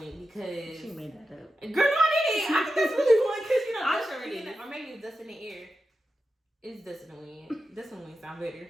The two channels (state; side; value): normal; both; correlation 0.90